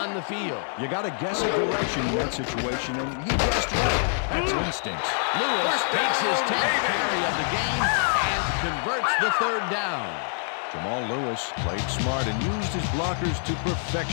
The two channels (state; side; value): silent; right; 61 dB below the other